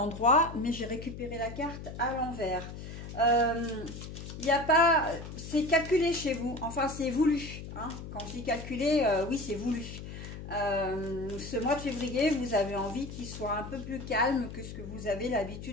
mais j'ai récupéré la carte à l'envers. Il n'y a pas... C'est calculé chez vous, enfin c'est voulu. Hein. Quand je dis calculé, oui c'est voulu. Ce mois de février, vous avez envie qu'il soit un peu plus calme que ce que vous avez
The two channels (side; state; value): left; noise; hum, 10 dB below the sound